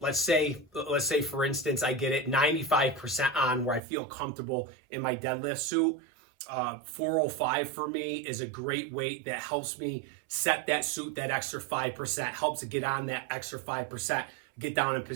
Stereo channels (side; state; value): left; drops out; at 3.8 s